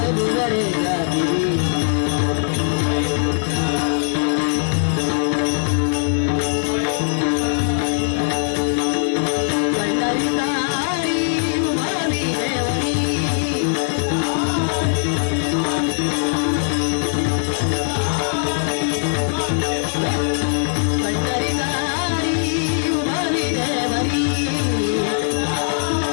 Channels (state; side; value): silent; right; digital silence